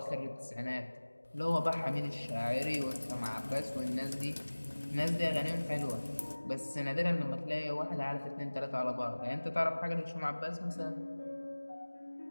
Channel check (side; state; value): both; inverted; correlation -1.00